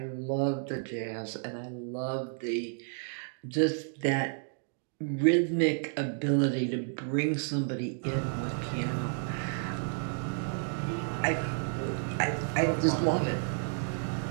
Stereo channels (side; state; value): left; silent; 57 dB below the other